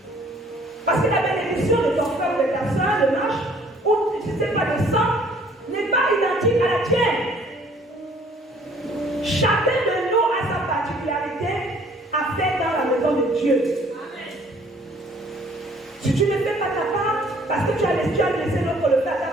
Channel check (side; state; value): both; normal; correlation 0.57